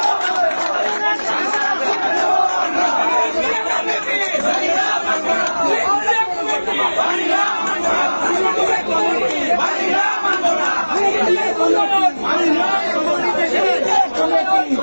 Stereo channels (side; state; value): both; inverted; correlation -1.00